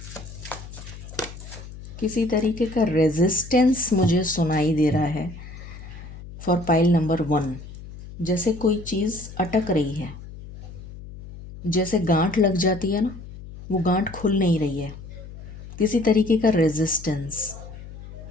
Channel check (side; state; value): left; noise; hum, 14 dB below the sound